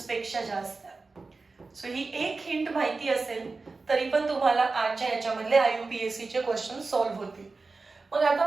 पेक्षा जास्त आहे. सो ही एक हिंट माहिती असेल तरी पण तुम्हाला आजच्या याच्यामधले IUPAC चे क्वेश्चन सॉल्व्ह होतील. मग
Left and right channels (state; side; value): quieter; left; 3.9 dB